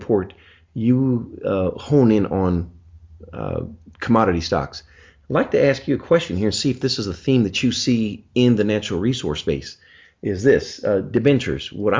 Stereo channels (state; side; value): identical; both; correlation 1.00